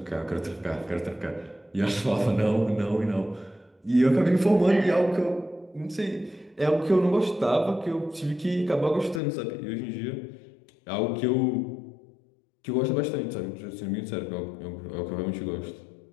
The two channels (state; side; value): drops out; right; at 9.2 s